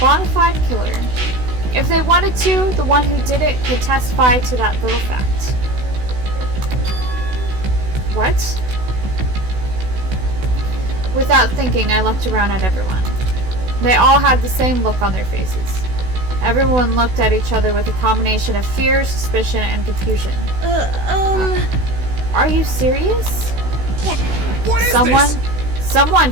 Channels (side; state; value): left; late; 16 ms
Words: fide killer. If they wanted to, the one who did it could testify to that little fact. What? Without thinking, I looked around at everyone. They all had the same look on their faces. Everyone looked at each other with a combination of fear, suspicion, and confusion. Are you serious? What is Someone